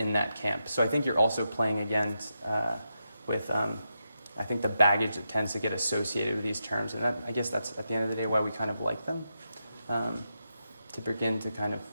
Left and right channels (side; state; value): both; inverted; correlation -0.86